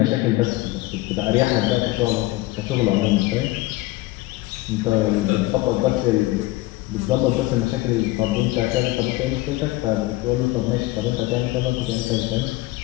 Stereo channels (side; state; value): right; quieter; 18.8 dB